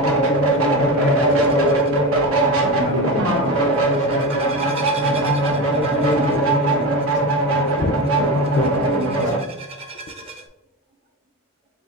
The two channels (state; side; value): normal; both; correlation 0.22